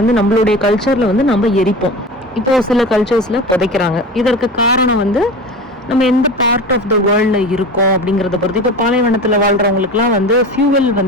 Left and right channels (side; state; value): both; normal; correlation 0.32